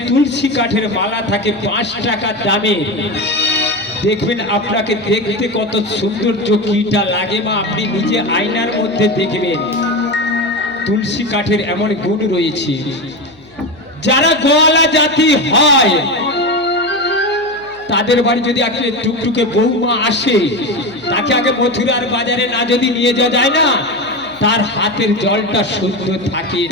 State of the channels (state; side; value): noise; left; hum, 29 dB below the sound